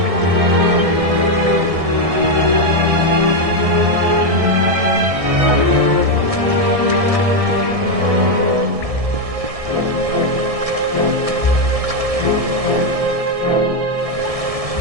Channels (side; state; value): left; late; 1.6 ms